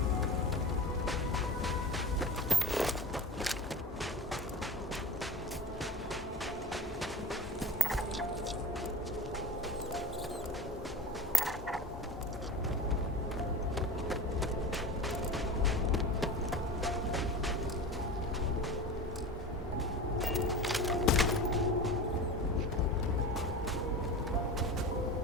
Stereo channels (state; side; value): normal; both; correlation 0.32